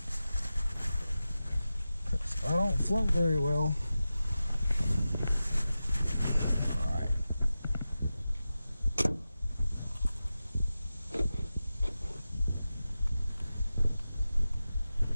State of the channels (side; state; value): both; inverted; correlation -0.93